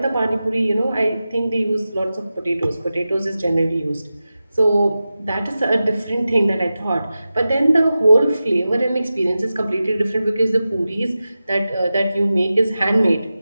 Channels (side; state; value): both; inverted; correlation -0.93